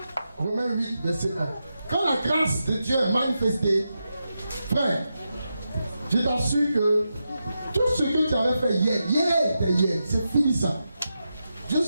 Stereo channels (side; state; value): both; inverted; correlation -0.88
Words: Romains 8, verset 1. Quand la grâce de Dieu est manifestée, frère, je t'assure que tout ce que tu avais fait hier, c'est fini ça. Dieu ne